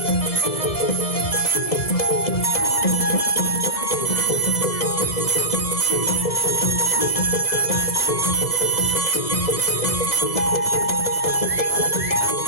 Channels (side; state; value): right; late; 2.0 ms